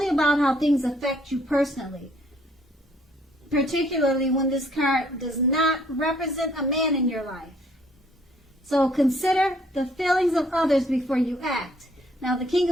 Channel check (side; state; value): both; normal; correlation 0.63